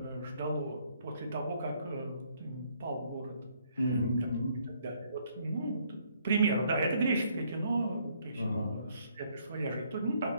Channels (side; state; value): both; inverted; correlation -0.67